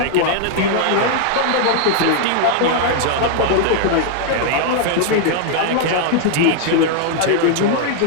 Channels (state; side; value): different; both; correlation 0.00